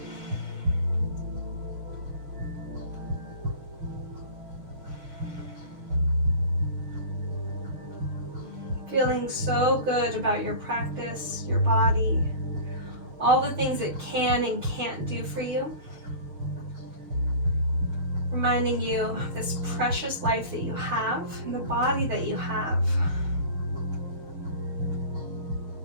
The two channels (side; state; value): left; late; 6.5 ms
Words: Feeling so good about your practice, your body, all the things it can and can't do for you. Reminding you of this precious life that you have and the body that you have.